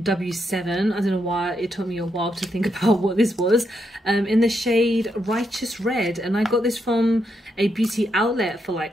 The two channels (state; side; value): normal; both; correlation 0.80